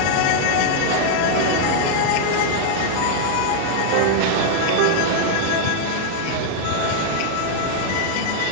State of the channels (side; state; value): both; different; correlation 0.00